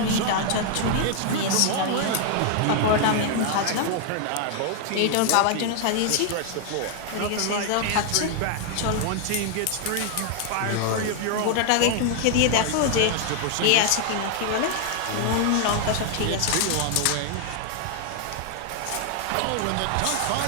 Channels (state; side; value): different; both; correlation 0.00